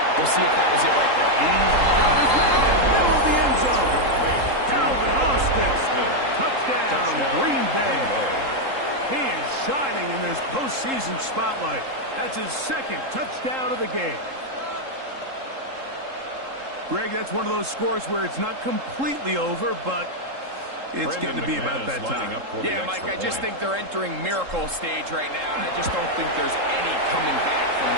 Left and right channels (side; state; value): left; late; 3.7 ms